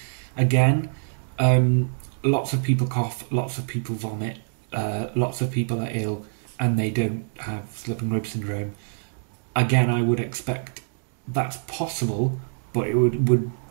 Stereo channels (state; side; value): silent; left; digital silence